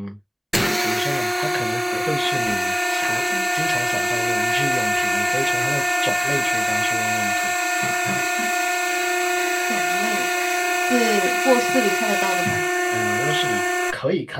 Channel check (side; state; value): both; identical; correlation 1.00